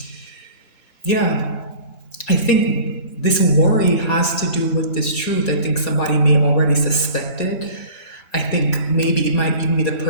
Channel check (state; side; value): late; right; 2.9 ms